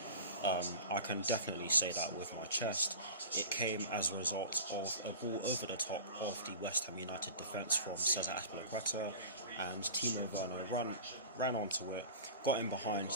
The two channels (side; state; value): both; inverted; correlation -0.35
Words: I can definitely say that with my chest. It came as a result of a ball over the top of the West Ham United defence from Cesar Azpilicueta, and Timo Werner ran onto it, got in behind